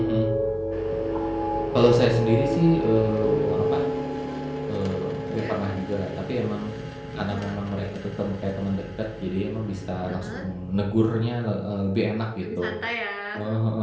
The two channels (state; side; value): identical; both; correlation 1.00